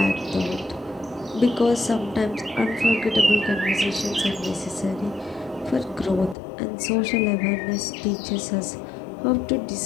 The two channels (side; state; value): right; drops out; at 6.4 s